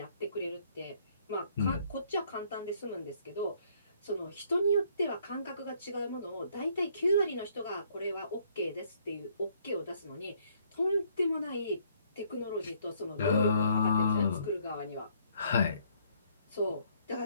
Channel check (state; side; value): inverted; both; correlation -0.65